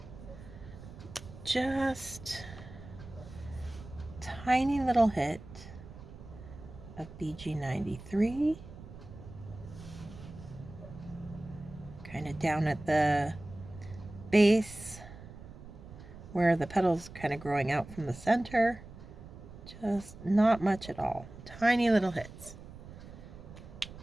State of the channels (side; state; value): right; noise; rumble, 15 dB below the sound